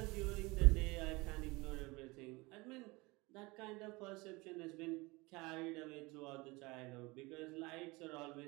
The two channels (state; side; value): quieter; left; 23.9 dB